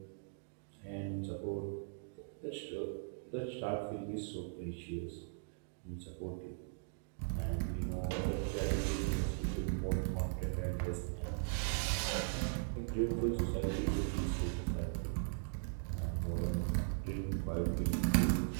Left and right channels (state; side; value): silent; left; digital silence